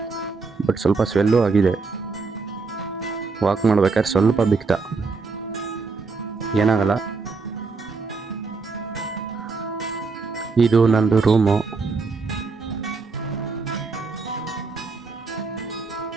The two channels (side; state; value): left; quieter; 4.4 dB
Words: ಬಟ್ ಸ್ವಲ್ಪ ಸ್ವೆಲ್ಲು ಆಗಿದೆ. ವಾಕ್ ಮಾಡ್ಬೇಕಾದ್ರೆ ಸ್ವಲ್ಪ ಬಿಕ್ತ, ಏನಾಗಲ್ಲ. ಇದು ನಂದು ರೂಮು.